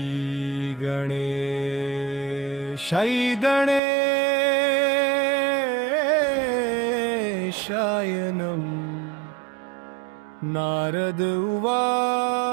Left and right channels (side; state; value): left; drops out; at 3.8 s